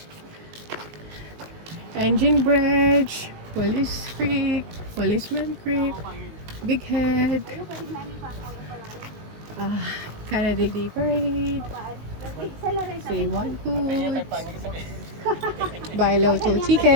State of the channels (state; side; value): late; left; 19 ms